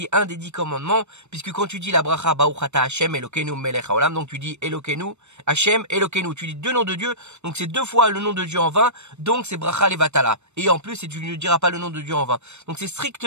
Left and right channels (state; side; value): late; left; 0.82 ms